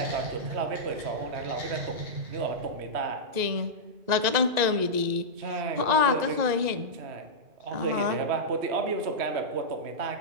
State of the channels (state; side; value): late; left; 2.0 ms